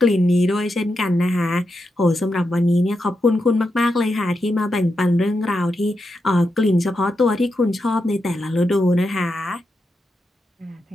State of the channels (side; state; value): both; normal; correlation 0.86